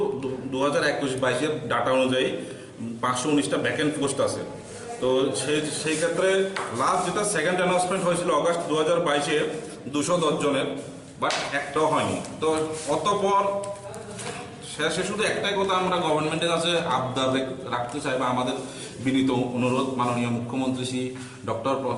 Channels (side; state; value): both; identical; correlation 1.00